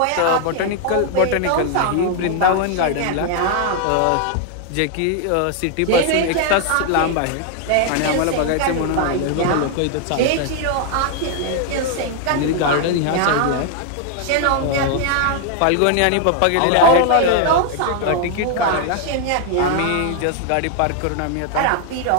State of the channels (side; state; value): both; different; correlation 0.00